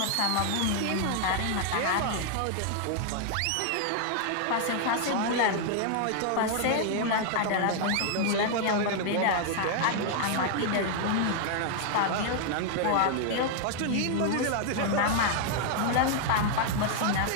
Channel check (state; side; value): different; both; correlation 0.00